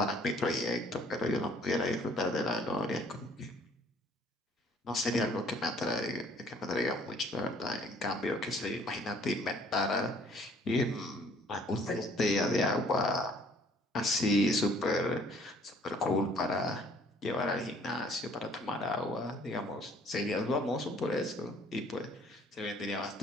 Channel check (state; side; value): normal; both; correlation 0.58